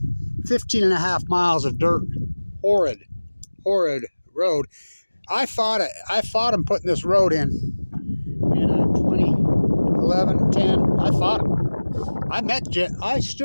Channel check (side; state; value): both; inverted; correlation -1.00